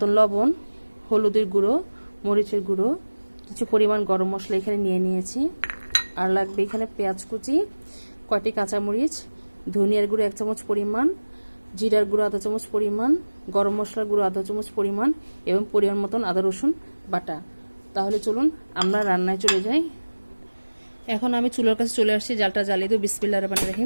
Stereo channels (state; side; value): inverted; both; correlation -1.00